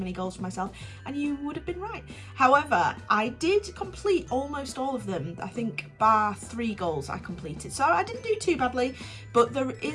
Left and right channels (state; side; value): identical; both; correlation 1.00